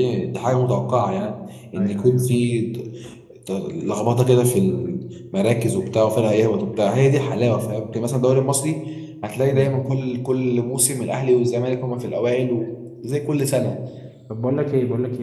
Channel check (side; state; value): both; identical; correlation 1.00